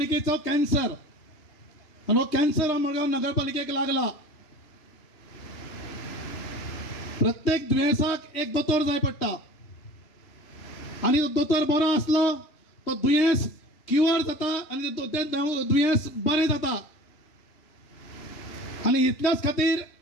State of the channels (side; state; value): right; late; 3.2 ms